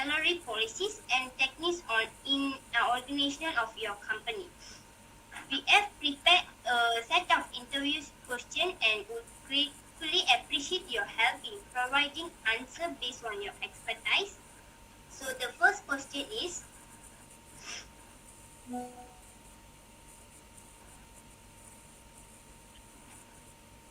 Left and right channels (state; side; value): identical; both; correlation 1.00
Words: policies, and techniques in organization of your company. We have prepared a set of interview questions and would gratefully appreciate your help in providing answers based on your expertise. So the first question is,